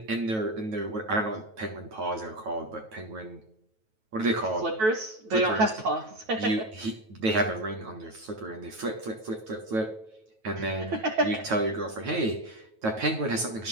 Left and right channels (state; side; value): late; left; 9.2 ms